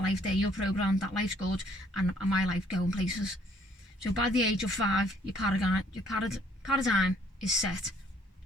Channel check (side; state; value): both; normal; correlation 0.63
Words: life there, you're programmed that life's good, and my life going places. So by the age of 5, your paradigm is set